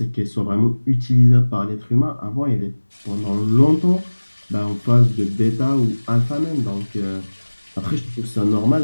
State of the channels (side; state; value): both; inverted; correlation -1.00